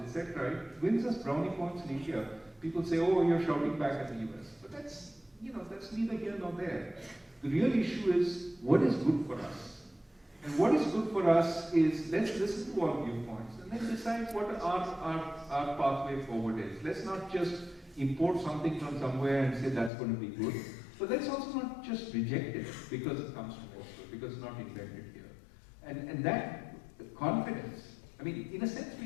it wins us brownie points in India. People say, oh, you're shouting back at the US. But that's neither here nor there. The real issue is what is good for us. And what is good for us is let's listen to all viewpoints and then decide what our pathway forward is. Let's not just import something from somewhere and say that's going to be good. But let's also not just reject it because it comes from elsewhere, because it's not invented here. And that confidence, I mean, in a sense,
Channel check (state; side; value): drops out; right; at 19.9 s